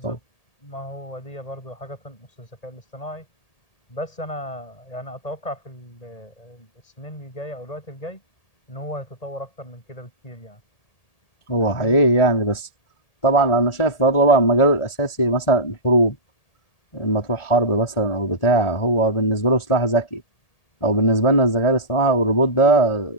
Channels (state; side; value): late; right; 1.8 ms